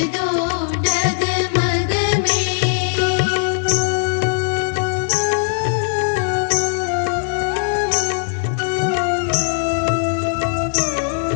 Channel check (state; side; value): silent; right; 66 dB below the other